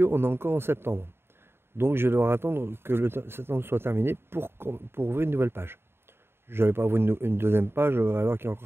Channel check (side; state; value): left; late; 0.11 ms